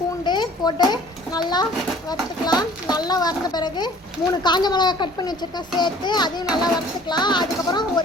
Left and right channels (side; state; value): both; normal; correlation 0.51